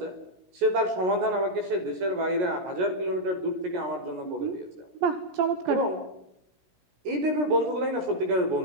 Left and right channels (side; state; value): left; late; 17 ms